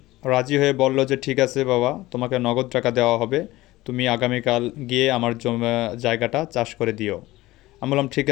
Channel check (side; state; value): right; quieter; 18.1 dB